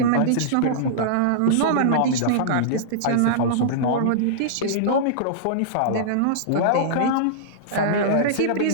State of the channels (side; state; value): both; different; correlation -0.02